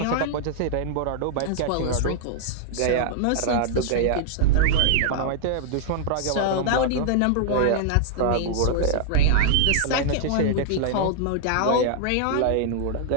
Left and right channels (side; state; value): both; different; correlation -0.01